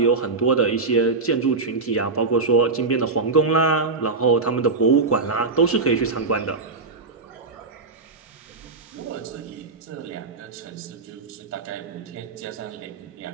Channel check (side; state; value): left; quieter; 4.0 dB